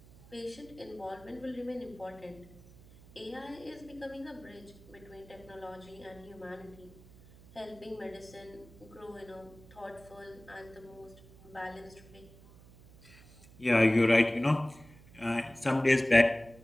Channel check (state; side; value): noise; right; hum, 22 dB below the sound